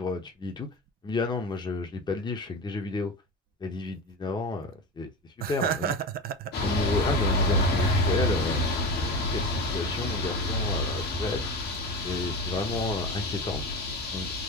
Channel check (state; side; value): normal; both; correlation 0.26